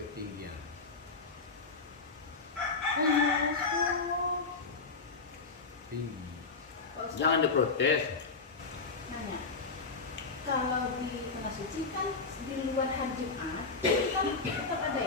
ketinggian. Tinggi. jangan diprotes. Nanya, kalau di tengah suci kan di luar hari Jumat kan tetap ada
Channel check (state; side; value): quieter; right; 4.2 dB